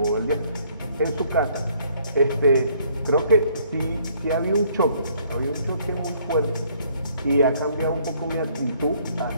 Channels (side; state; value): both; inverted; correlation -0.64